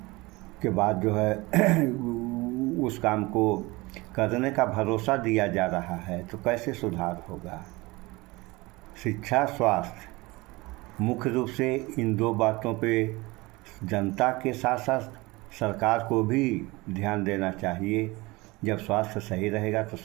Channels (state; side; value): quieter; left; 22.6 dB